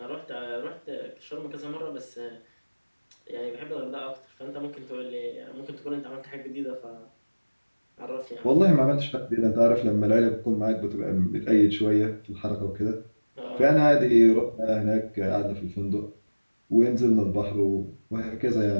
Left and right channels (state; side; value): inverted; both; correlation -1.00